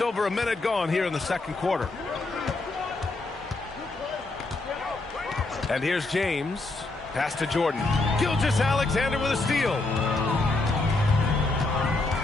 over a minute gone here in the second quarter. And here's James. Pass to Jordan. Gilgeous-Alexander with a steal.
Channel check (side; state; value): right; quieter; 3.2 dB